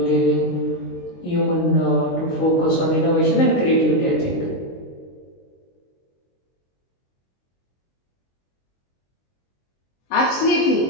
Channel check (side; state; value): right; late; 23 ms